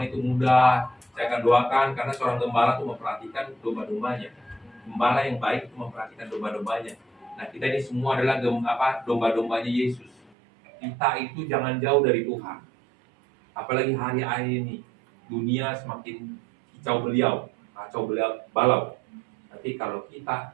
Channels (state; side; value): drops out; left; at 10.3 s